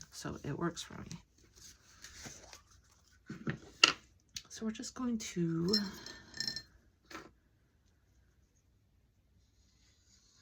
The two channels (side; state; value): both; identical; correlation 1.00